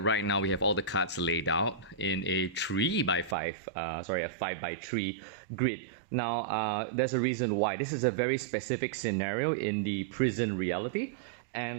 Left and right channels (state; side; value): drops out; left; at 3.4 s